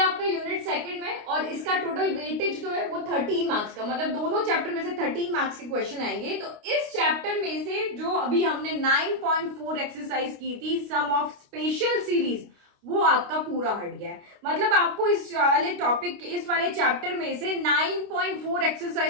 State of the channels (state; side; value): late; left; 29 ms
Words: यूनिट सेकंड में, और इसका टोटल वेटेज जो है वो 13 मार्क्स का, मतलब दोनों चैप्टर में से 13 मार्क्स के क्वेश्चन आएंगे। तो इस चैप्टर में से जो अभी हमने 9.4 एक्सरसाइज की थी, सम ऑफ स्पेशल सीरीज, वो आपका पूरा हट गया है। मतलब आपको इस वाले टॉपिक, इस वाले चैप्टर में से 9.4